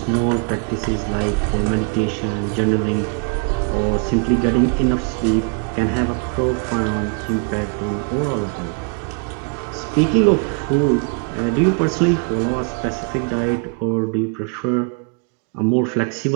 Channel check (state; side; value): quieter; left; 36.5 dB